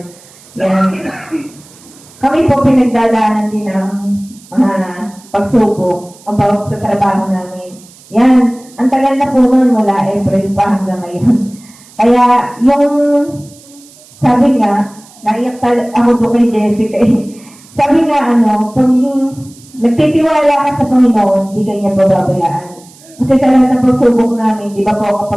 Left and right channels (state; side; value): noise; right; hiss, 24 dB below the sound